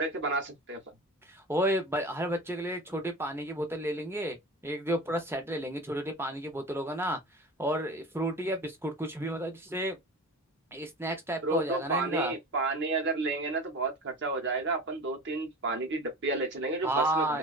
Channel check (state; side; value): normal; both; correlation 0.34